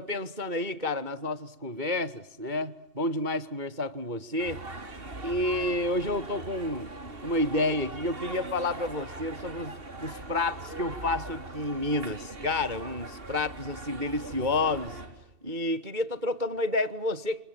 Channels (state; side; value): late; left; 2.7 ms